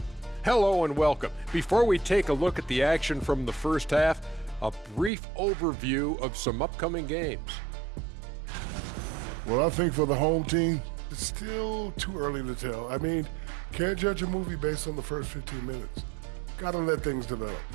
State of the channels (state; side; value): drops out; left; at 5.1 s